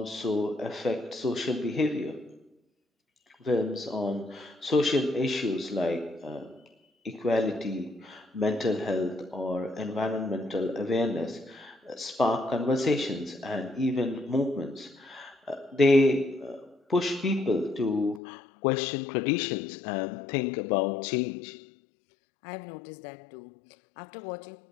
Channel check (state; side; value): drops out; right; at 18.2 s